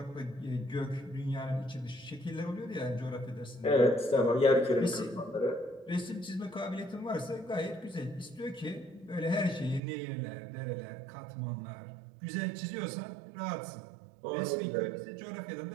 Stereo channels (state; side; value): drops out; left; at 9.8 s